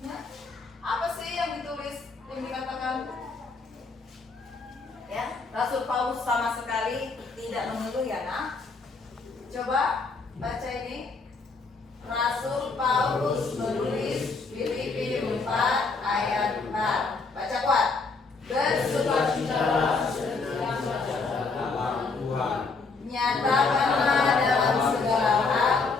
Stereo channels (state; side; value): quieter; right; 4.2 dB